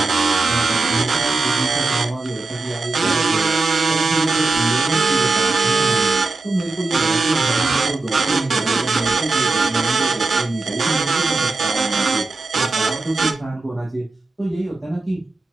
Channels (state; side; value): quieter; left; 3.4 dB